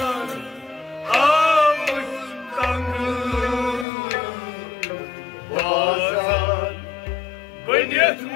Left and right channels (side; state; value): right; drops out; at 3.9 s